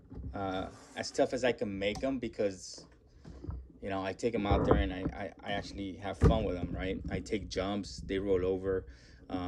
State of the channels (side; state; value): both; identical; correlation 1.00